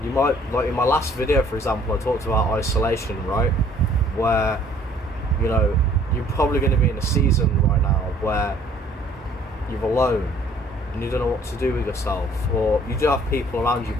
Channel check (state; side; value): normal; both; correlation 0.58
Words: you might, like in my last video, for example, I talked about isolation, right? Where, you know, you're probably going to be in a season right now where you're alone and you don't know what to do with yourself, or you do have people around you,